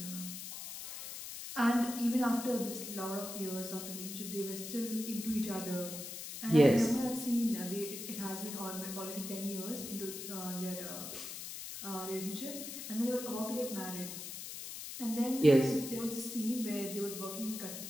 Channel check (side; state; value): left; noise; hiss, 8 dB below the sound